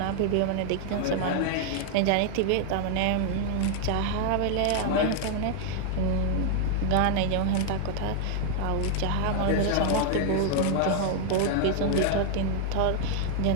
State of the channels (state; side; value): different; both; correlation 0.00